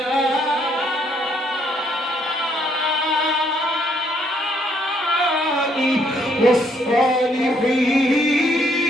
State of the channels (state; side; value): normal; both; correlation 0.69